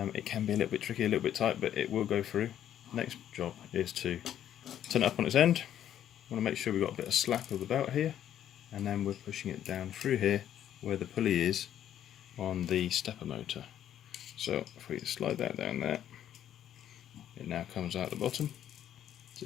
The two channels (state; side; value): quieter; right; 10.7 dB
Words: It can be a little bit tricky, a little bit tight, but it will go through. Next job is to turn it up on its end. We want to make sure we've got a bit of slack of the belt here, and then we're pushing it down through here where the pulley is on the stepper motor. So if we slide that down there, it now comes out the bottom.